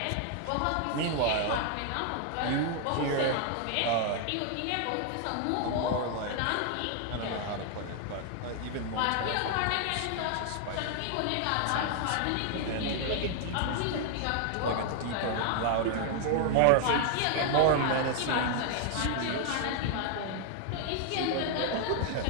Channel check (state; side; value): different; both; correlation 0.00